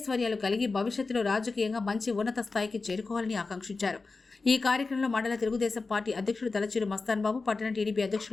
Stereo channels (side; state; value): right; quieter; 4.0 dB